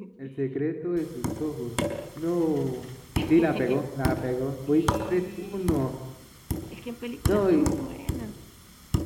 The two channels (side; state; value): both; identical; correlation 1.00